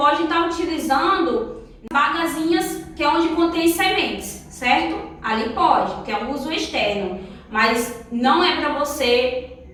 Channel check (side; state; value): both; identical; correlation 1.00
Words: estar utilizando bagazinhas que é onde contém sementes, certo? Ali pode, que é um uso externo, mas não é para você